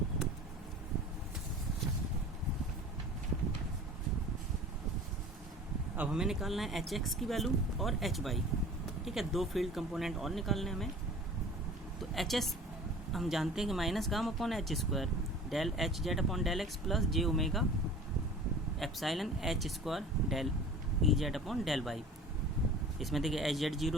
अब हमें निकालना है एच एक्स की वैल्यू और एच वाई, ठीक है, दो फील्ड कंपोनेंट और निकालने हमें। तो एच एस हम जानते हैं कि minus gamma upon H square del H Z upon del X plus J omega epsilon H square del E Z upon del Y. इसमें देखिए एच जेड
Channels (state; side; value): normal; both; correlation 0.42